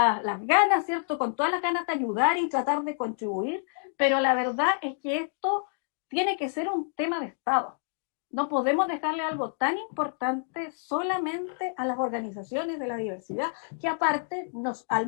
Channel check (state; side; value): silent; right; digital silence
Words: ganas, ¿cierto? Con todas las ganas de ayudar y tratar de contribuir, pero la verdad es que esto tiene que ser un tema de Estado. No podemos dejarle algo tan importante solamente a las organizaciones de la diversidad, que aparte, al